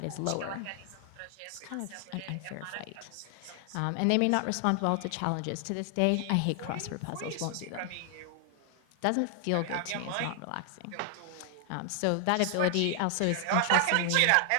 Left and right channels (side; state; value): both; different; correlation 0.00